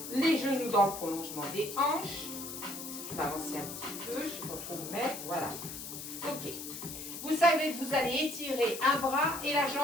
Les genoux dans le prolongement des hanches. Je vais avancer un petit peu, je ne sais pas trop où mettre, voilà. Ok. Vous savez que vous allez étirer un bras et la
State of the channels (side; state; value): left; noise; hiss, 9 dB below the sound